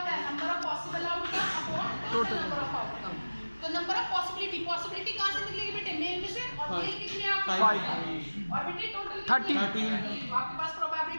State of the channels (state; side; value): inverted; both; correlation -1.00